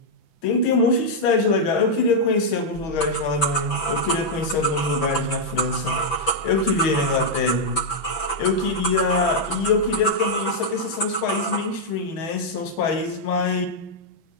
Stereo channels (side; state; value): right; late; 6.0 ms